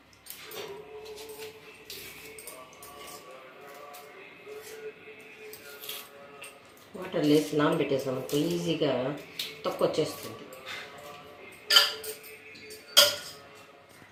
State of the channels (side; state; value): both; identical; correlation 1.00